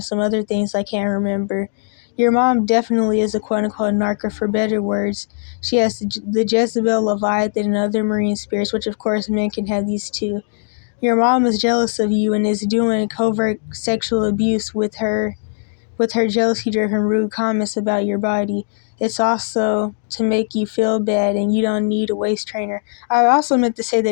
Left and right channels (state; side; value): silent; right; digital silence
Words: some other things I can't remember. Your mom definitely is a quote-unquote narc, for better words. She has the Jezebel, Leviathan, and other marine spirits, which of course men can have these too. Your mom is jealous of you and is doing covert sexual abuse with her jealousy-driven rude comments about your body. It's also to make you feel bad, and you don't need a waist trainer. I also meant to say